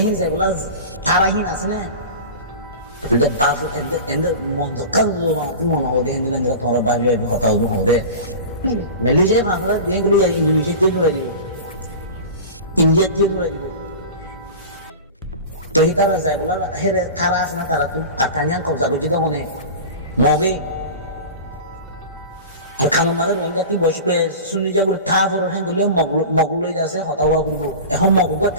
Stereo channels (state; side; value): inverted; both; correlation -0.33